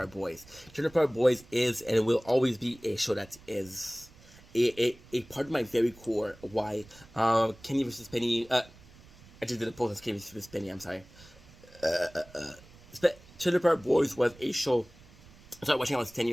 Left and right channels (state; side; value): noise; right; rumble, 23 dB below the sound